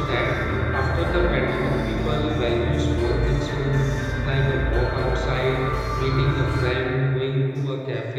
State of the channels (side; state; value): both; identical; correlation 1.00